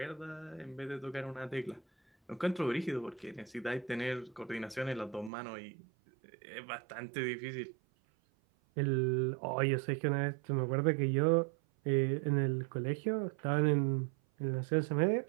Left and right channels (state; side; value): drops out; left; at 5.3 s